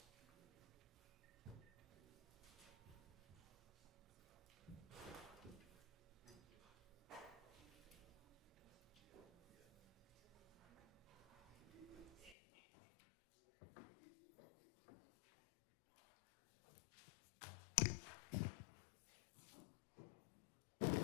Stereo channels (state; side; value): drops out; right; at 12.4 s